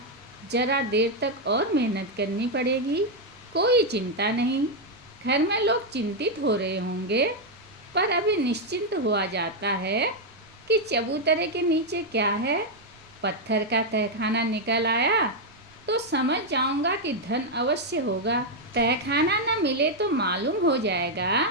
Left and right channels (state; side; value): noise; right; rumble, 28 dB below the sound